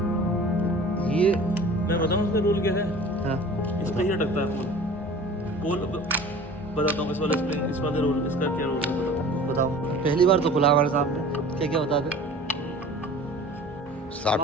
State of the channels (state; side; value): normal; both; correlation 0.43